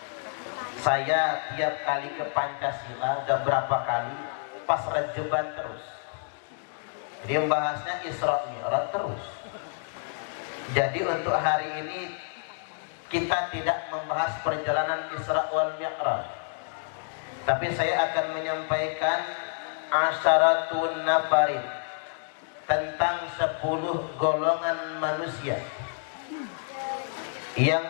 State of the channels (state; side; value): silent; right; 59 dB below the other